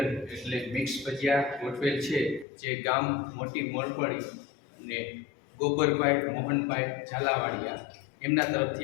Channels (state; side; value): drops out; right; at 2.5 s